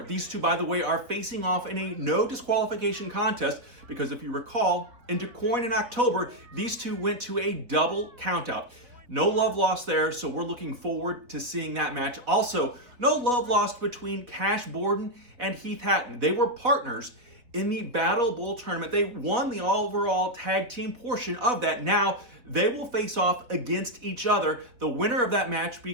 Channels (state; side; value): late; left; 3.8 ms